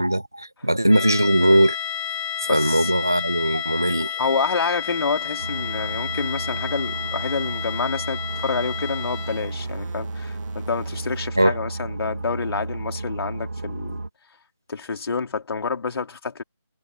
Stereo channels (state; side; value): inverted; both; correlation -0.75